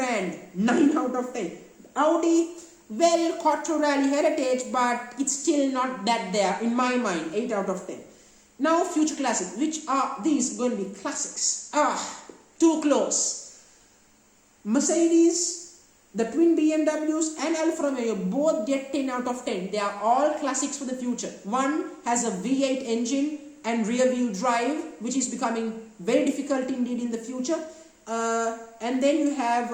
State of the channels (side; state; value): both; identical; correlation 1.00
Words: 9 out of 10. Audi, well, Quattro Rally heritage, but it's still not that there in my mind, 8 out of 10. Now, future classics. Which are these going to be classics? Too close. Mercedes, the twin BMWs and Alfa Romeo both get 10 out of 10. They are all classics for the future. One has a V8 engine and rear wheel drive, which is becoming very difficult indeed in the future. And then you have,